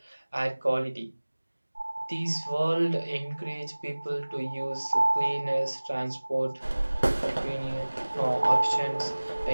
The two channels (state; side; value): inverted; both; correlation -1.00